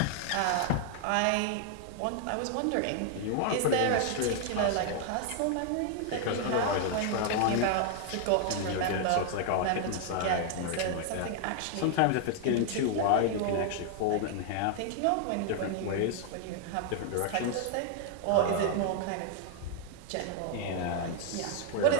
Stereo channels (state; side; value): different; both; correlation 0.00